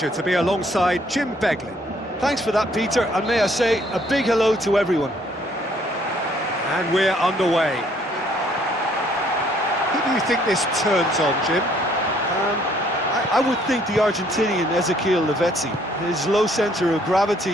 to be alongside Jim Beglin. Thanks for that, Peter, and may I say a big hello to everyone. And we're underway. Who do you think this turns on, Jim? I would think the Argentinian Ezequiel Lavezzi. His low centre of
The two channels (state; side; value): normal; both; correlation 0.64